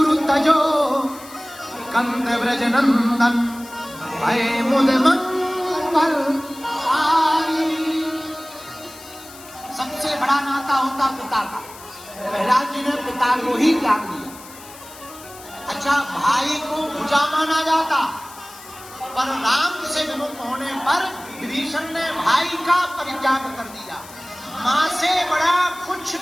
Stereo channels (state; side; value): noise; left; hiss, 18 dB below the sound